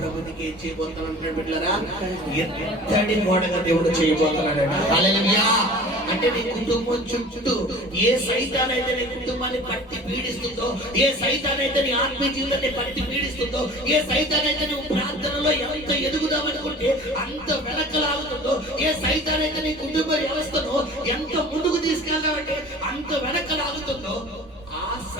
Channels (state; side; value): normal; both; correlation 0.42